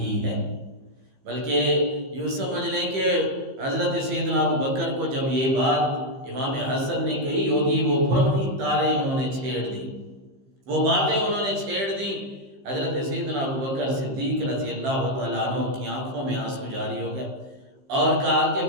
ہے۔ بلکہ یوں سمجھ لیں کہ حضرت سیدنا ابو بکر کو جب یہ بات امام حسن نے کہی ہوگی، وہ پرانی تاریں انہوں نے چھیڑ دی، وہ باتیں انہوں نے چھیڑ دی۔ حضرت سیدنا ابو بکر صدیق رضی اللہ تعالیٰ عنہ کی آنکھوں میں آنسو جاری ہو گئے اور کہا کہ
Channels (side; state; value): left; late; 15 ms